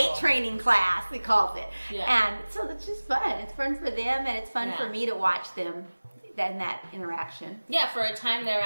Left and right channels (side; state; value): both; inverted; correlation -1.00